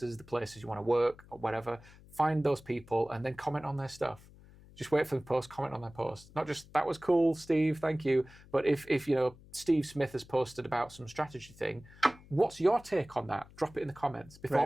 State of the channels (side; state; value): left; noise; hum, 22 dB below the sound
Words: the places you want to work or whatever. Find those people and then comment on their stuff. Just wait for the post, comment on their post. Not just, that was cool, Steve, thank you. But if you know, Steve Smith has posted about some strategy thing, what's your take on that? Drop it in the comments. Be